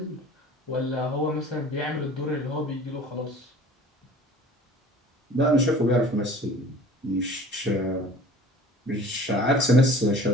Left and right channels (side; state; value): both; normal; correlation 0.46